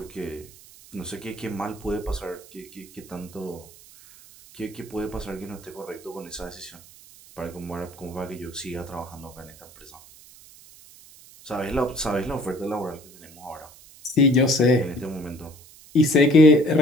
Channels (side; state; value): right; noise; hiss, 22 dB below the sound